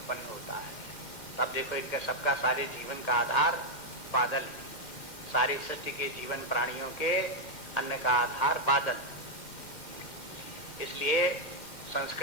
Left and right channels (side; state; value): right; late; 2.1 ms